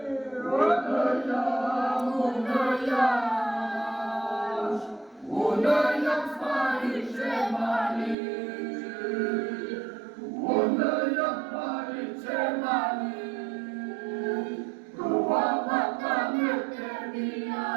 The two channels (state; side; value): drops out; left; at 8.2 s